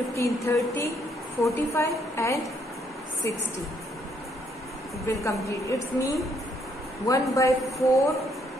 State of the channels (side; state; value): both; normal; correlation 0.71